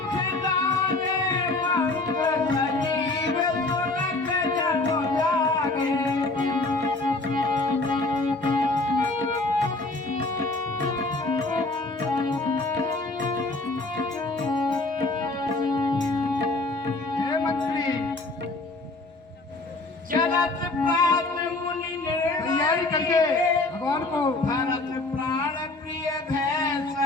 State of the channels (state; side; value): quieter; right; 3.1 dB